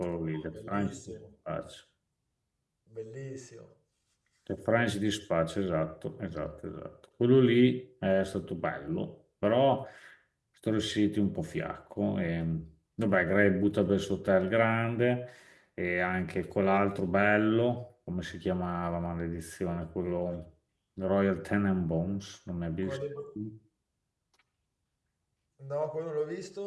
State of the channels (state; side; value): identical; both; correlation 1.00